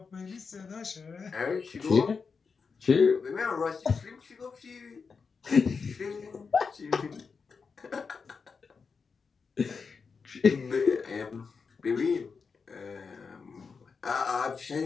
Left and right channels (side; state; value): right; quieter; 5.3 dB